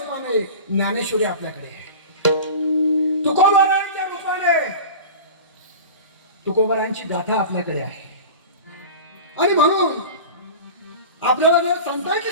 ज्ञानेश्वरी आपल्याकडे आहे. तुकोबारायांच्या रूपाने तुकोबारायांची गाथा आपल्याकडे आहे. आणि म्हणून आपल्याला जर संतांची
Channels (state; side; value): inverted; both; correlation -0.33